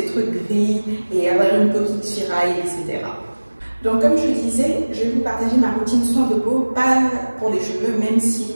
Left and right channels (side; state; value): both; inverted; correlation -1.00